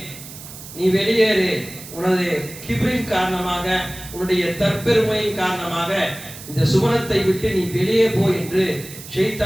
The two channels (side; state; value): right; noise; hiss, 15 dB below the sound